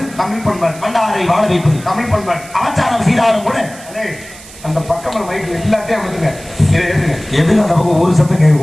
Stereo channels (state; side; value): noise; right; hiss, 18 dB below the sound